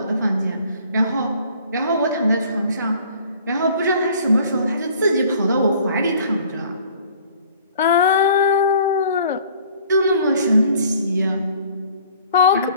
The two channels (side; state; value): both; inverted; correlation -0.54